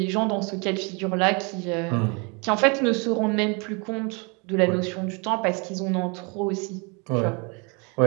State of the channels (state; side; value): quieter; left; 32.1 dB